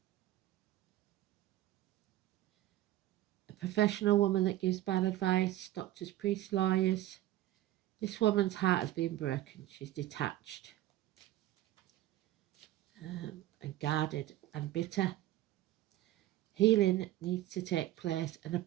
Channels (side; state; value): left; quieter; 14.7 dB